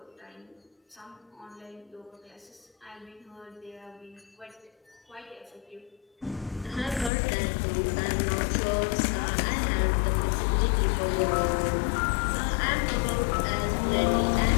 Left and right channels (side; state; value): right; drops out; at 7.1 s